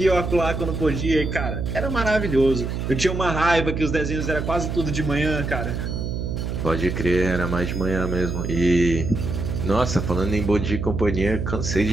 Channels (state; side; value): noise; right; hum, 3 dB below the sound